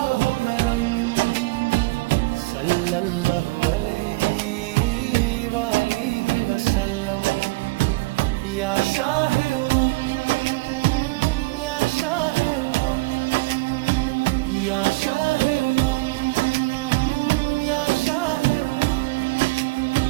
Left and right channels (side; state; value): left; quieter; 23.9 dB